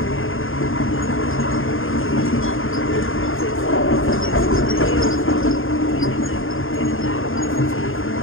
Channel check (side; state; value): right; late; 0.59 ms